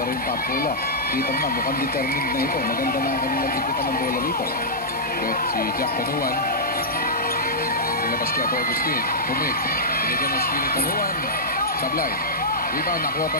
yung Pop Cola, kita mo na, mukhang determined na ito. Maganda na ang kanilang ikutan ng bola rito. But si Jack Tanuan, nilabas kaya ito Agustin. Pumik. Binigyan ng screen ni Tanuan. Sablay. Rebound, nakuha pa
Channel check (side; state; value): both; normal; correlation -0.11